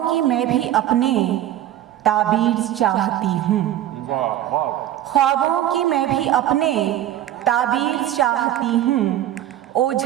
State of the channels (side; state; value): left; quieter; 12.6 dB